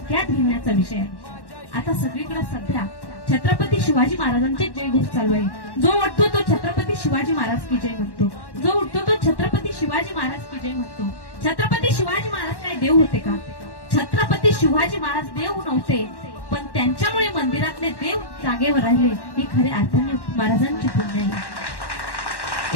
घेण्याचा विषय आहे. आता सगळीकडे सध्या छत्रपती शिवाजी महाराजांचे जयघोष चालू आहे. जो उठतो तो छत्रपती शिवाजी महाराज की जय म्हणतो, जो उठतो तो छत्रपती शिवाजी महाराज की जय म्हणतो. छत्रपती शिवाजी महाराज काय देव होते का? छत्रपती शिवाजी महाराज देव नव्हते, पण त्यांच्यामुळे मंदिरातले देव जागेवर राहिले. ही खऱ्या अर्थाने महाराजांची पुण्य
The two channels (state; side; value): late; right; 1.1 ms